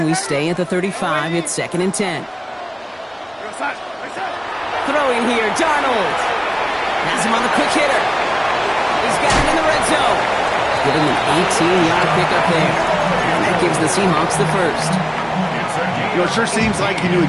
we stay at the 35. It's 2nd and 10. Throwing here, Darnold. Has him on the quick hitter. He's got it in the red zone. Giving an 18-yard pickup there. And that gives the Seahawks the first. You know, it sure seems like he knew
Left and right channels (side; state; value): both; identical; correlation 1.00